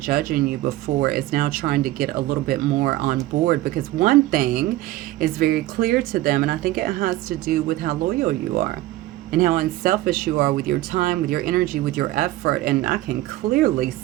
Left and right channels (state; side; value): quieter; left; 16.3 dB